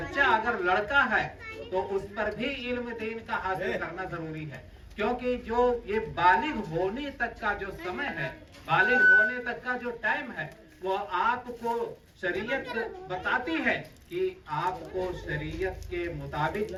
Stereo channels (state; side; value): identical; both; correlation 1.00